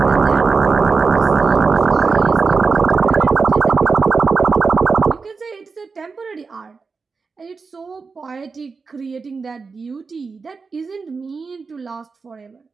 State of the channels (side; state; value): left; quieter; 4.7 dB